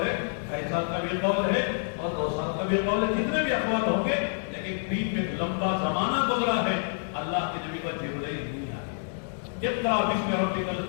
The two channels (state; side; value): silent; right; digital silence